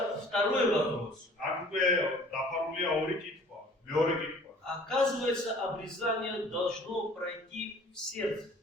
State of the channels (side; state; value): both; normal; correlation 0.51